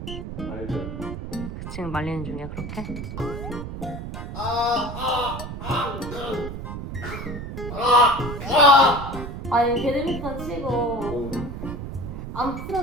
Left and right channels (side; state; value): right; noise; rumble, 7 dB below the sound